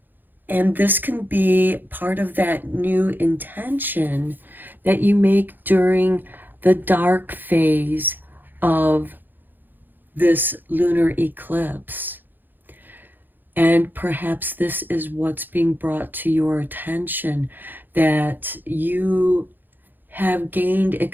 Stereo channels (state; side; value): late; left; 0.090 ms